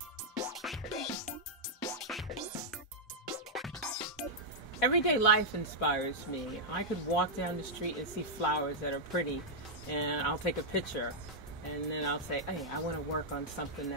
Everyday life inspires me. I could walk down the street and see flowers that are pretty, and I'll take a picture, and then I'll say, hey, I want to work on something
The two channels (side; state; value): both; normal; correlation -0.06